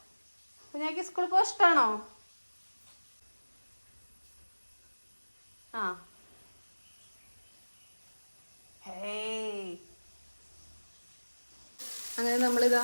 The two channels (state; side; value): inverted; both; correlation -1.00